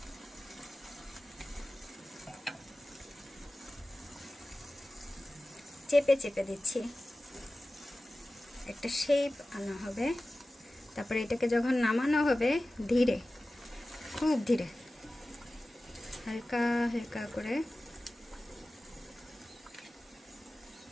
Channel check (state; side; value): normal; both; correlation 0.96